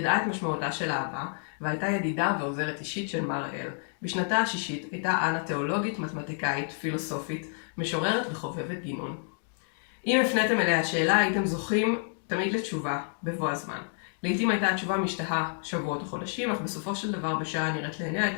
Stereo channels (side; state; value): right; silent; 56 dB below the other